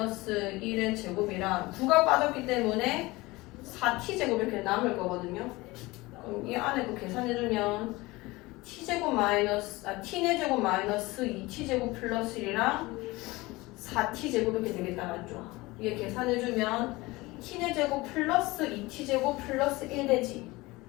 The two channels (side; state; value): right; quieter; 21.4 dB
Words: 1의 제곱이랑 9가 빠졌기 때문에 4t제곱 이렇게 남을 거거든요. 그럼 이 안에 그 계산해주면 t제곱 마이너스 t네 제곱 마이너스 2t제곱 플러스 1이랑 4t제곱 이렇게 되겠다 맞죠? 이게 계산해주면 t네 제곱 플러스 2t제곱 플러스 1 되지.